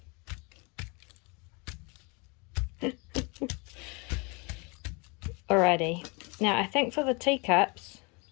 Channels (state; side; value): quieter; right; 30.2 dB